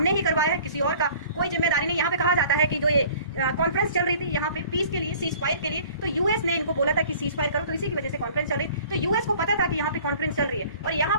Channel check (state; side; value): inverted; both; correlation -0.49